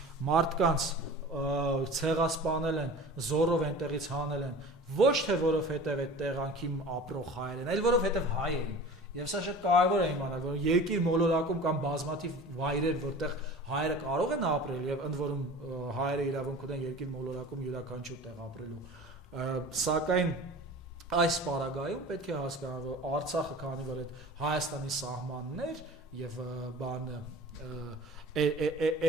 մարդկանց ցեղասպանել են, զորով այնտեղից հանել են, ոչ թե որովհետև այդ տեղանքի ապրող հայեր են, այլ որովհետև հայ էին։ Եվ սա շատ կարևոր է իմանալ, որ երկիր մոլորակում կամ բազմաթիվ վայրեր, որտեղ հայերը կարող են ապրել եւ ընդ որում հայերը իրավունք ունեն երկիր մոլորակում յուրաքանչյուր տեղ ապրելու, սակայն այս պարագայում պետք է հասկանալ, որ Արցախը, քանի որ այդ Հայաստանի սահմանն էր եւ բանը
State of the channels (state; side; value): normal; both; correlation 0.39